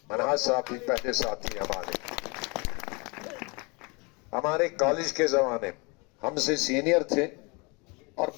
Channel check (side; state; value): right; quieter; 29.3 dB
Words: मनहास साहब भी पहले साथी हमारे। हमारे कॉलेज के जमाने हमसे सीनियर थे और